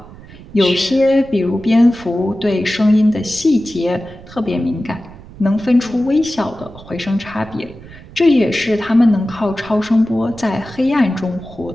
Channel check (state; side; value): noise; right; rumble, 19 dB below the sound